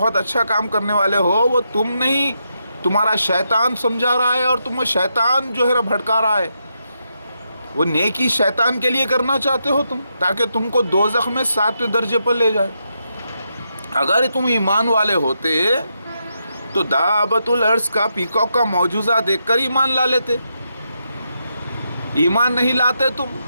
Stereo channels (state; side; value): inverted; both; correlation -0.83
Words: अच्छा काम करने वाले हो, वो तुम नहीं, तुम्हारा शैतान समझा रहा है और तुम्हें शैतान जो है भटका रहा है। वो नेकी शैतान के लिए करना चाहते हो तुम, ताकि तुमको दोज़ख में 7वें दर्जे पर ले जाए। अगर तुम ईमान वाले होते तो दाबतुल अर्ज़ का, पीकॉक का मौजूज़ा देखकर ईमान ला लेते। ईमान नहीं लाते तुम,